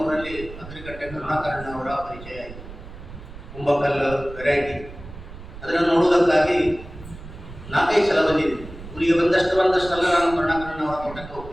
ಅಗ್ರಿಕಟ್ಟೆ ಕರುಣಾಕರಣ್ಣ ಅವರ ಪರಿಚಯ ಆಯಿತು. ಕುಂಬಕಲ್ಲು ವೆರೈಟಿ ಅದನ್ನು ನೋಡುವುದಕ್ಕಾಗಿ 4-5 ಸಲ ಬಂದಿದ್ದೆ. ಊರಿಗೆ ಬಂದಷ್ಟೆಲ್ಲ ನಾನು ಕರುಣಾಕರಣ್ಣ ಅವರ ತೋಟಕ್ಕೆ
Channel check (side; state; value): right; noise; rumble, 15 dB below the sound